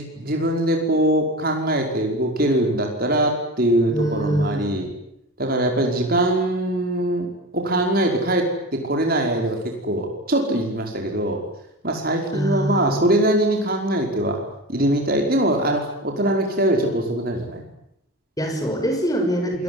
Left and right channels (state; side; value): normal; both; correlation 0.29